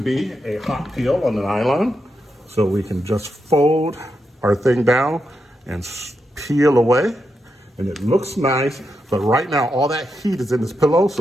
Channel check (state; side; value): normal; both; correlation 0.85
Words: a hot peel on the nylon, so we can just fold our thing down and peel away, and it looks nice. But right now all that heat is in this pillow, so